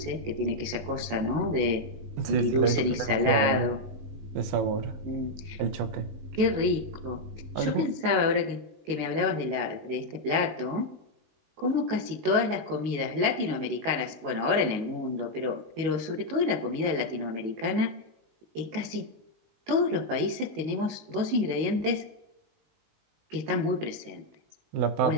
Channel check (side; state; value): left; late; 19 ms